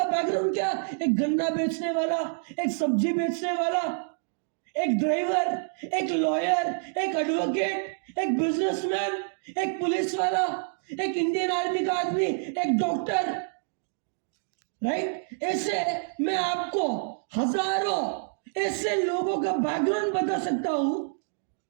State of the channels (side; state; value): left; silent; digital silence